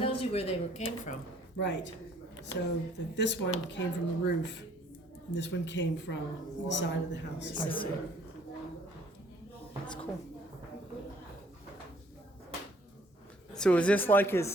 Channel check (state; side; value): normal; both; correlation 0.60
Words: tells you where they came from. right. So this one came from the roof, and this one came from the side of the house. I see. That's cool. So is this like